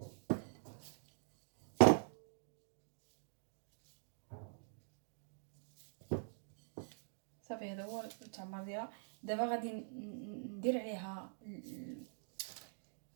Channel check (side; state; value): left; silent; digital silence